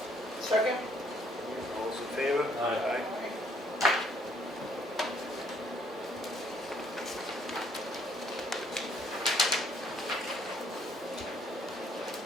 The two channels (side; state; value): both; normal; correlation 0.66